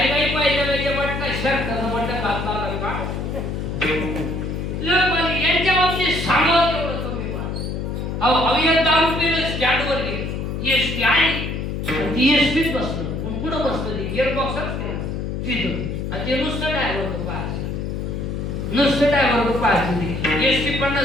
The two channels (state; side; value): noise; left; hum, 3 dB below the sound